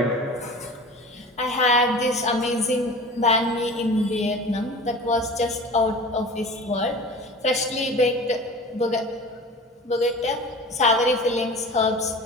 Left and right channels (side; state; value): both; normal; correlation 0.38